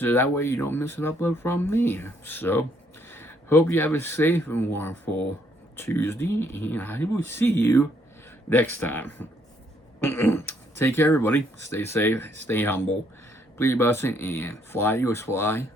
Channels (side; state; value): both; normal; correlation 0.69